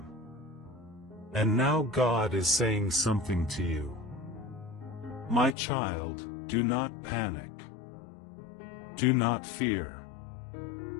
And now God is saying something to you. My child, do not panic. Do not fear.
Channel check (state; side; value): drops out; right; at 5.6 s